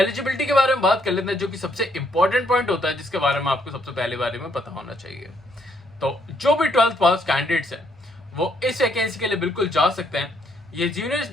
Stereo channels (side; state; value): both; normal; correlation 0.71